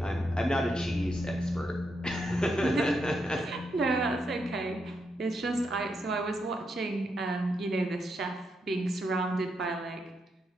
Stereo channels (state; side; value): normal; both; correlation 0.82